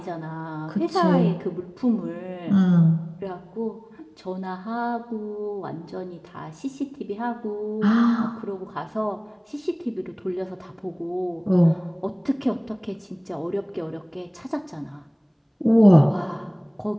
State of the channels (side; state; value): both; identical; correlation 1.00